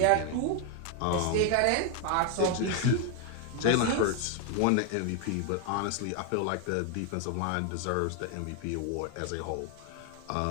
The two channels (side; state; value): both; different; correlation 0.01